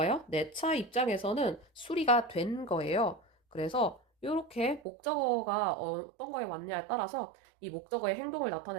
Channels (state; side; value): drops out; left; at 4.8 s